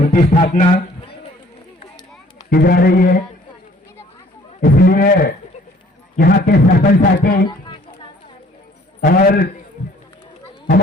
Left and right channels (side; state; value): both; normal; correlation 0.56